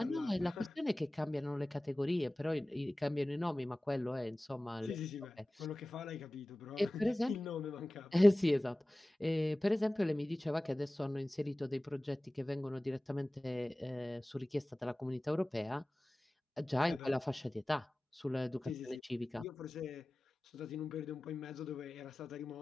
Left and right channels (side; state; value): both; normal; correlation 0.97